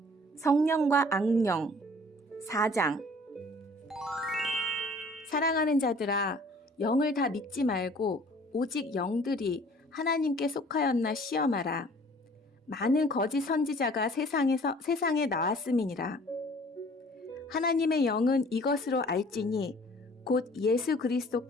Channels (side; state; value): both; normal; correlation 0.52